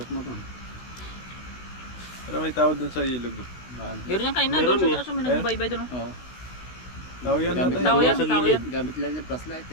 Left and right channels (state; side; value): late; right; 16 ms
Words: na to. Pero may tao dun sa ilog. Meron yan kanina. Meron Doon eh. sa taas may nagbabaybay doon. oh. Oo. Tao yan Gamit natin. Tao yan, Sa tao gilid. yan. Gamit lang yung flashlight